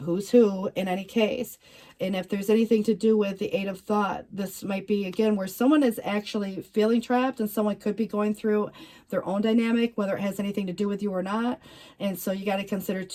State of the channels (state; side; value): identical; both; correlation 1.00